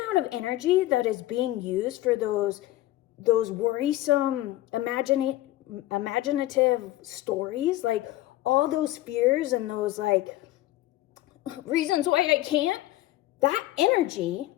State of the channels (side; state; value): right; quieter; 16.0 dB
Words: of energy that is being used for those worrisome, imaginative stories, like all those fears and those like reasons why I can't, that energy